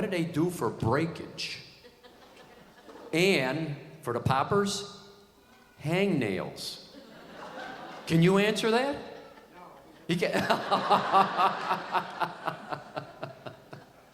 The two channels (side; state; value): both; identical; correlation 1.00